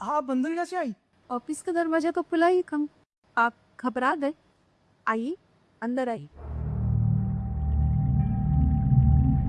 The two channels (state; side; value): identical; both; correlation 1.00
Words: आप अंदर कैसे आई? ऑफिस का दरवाजा तो खुला ही कम। आप घबरा गए? आइए, अंदर आइए।